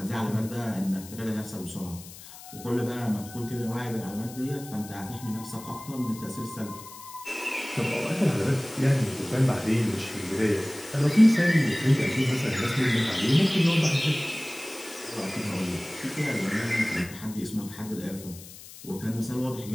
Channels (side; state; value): left; noise; hiss, 16 dB below the sound